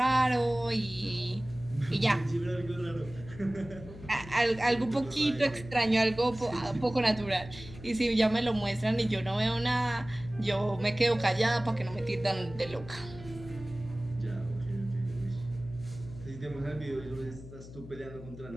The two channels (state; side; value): noise; left; hum, 15 dB below the sound